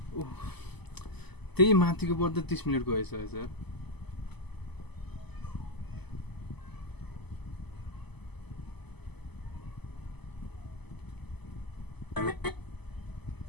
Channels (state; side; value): late; right; 0.99 ms